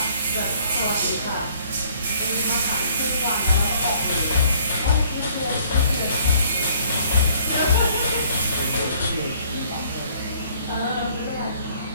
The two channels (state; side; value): inverted; both; correlation -0.60